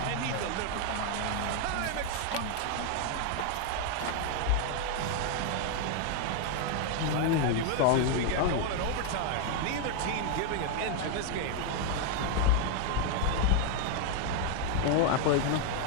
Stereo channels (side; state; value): both; different; correlation 0.00